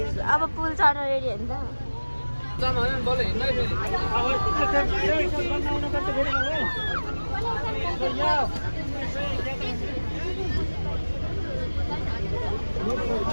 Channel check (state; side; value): inverted; both; correlation -1.00